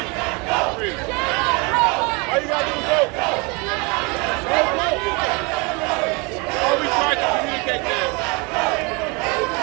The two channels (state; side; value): quieter; left; 28.9 dB